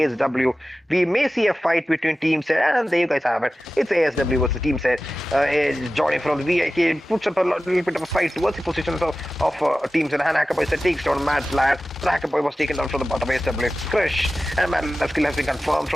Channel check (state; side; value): normal; both; correlation 0.95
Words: We may see a fight between Team Z, and there you guys have it. It's ASW versus Team Z. Johnny from the VIK puts up a little bit of a fight towards the positions of Team Z. And Hackerboy said takes down Mad Lad. Hackerboy was taken down from the bottom of ASW. Crush. And Mad Lad's skill has been confirmed